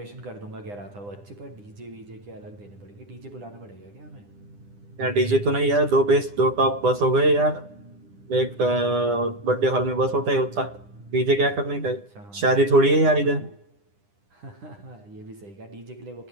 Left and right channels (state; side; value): late; left; 9.9 ms